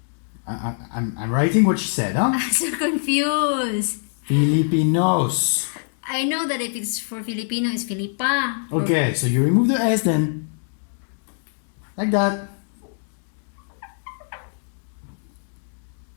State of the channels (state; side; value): silent; right; digital silence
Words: I'm writing what she said, huh? I'm so confused. Filipinos. I know that if it's for Filipino, it's Filipa. Okay, so you remove the S then. Like that.